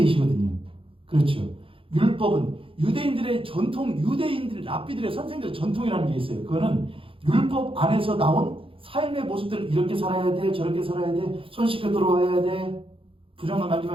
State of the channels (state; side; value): late; left; 0.26 ms